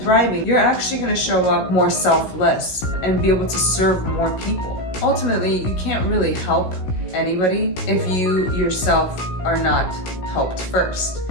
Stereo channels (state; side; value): late; right; 16 ms